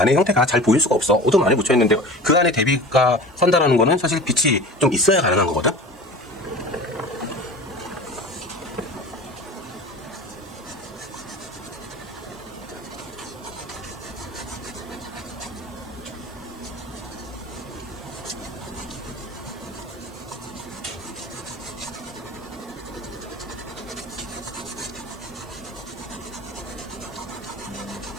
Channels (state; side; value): normal; both; correlation 0.37